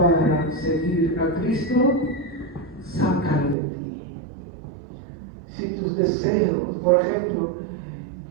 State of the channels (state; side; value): drops out; left; at 3.6 s